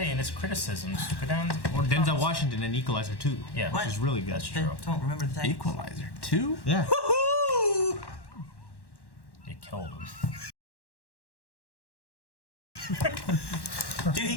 and its criticisms, go down. Or Denzel Washington in Equalizer 2. Yeah. Which is really good. That's true. Don't remember the Titans. Equalizer 2? Yeah. You killed him. Dude,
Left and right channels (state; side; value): late; right; 1.1 ms